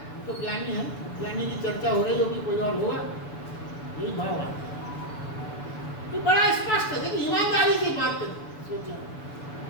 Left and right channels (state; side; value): late; right; 6.9 ms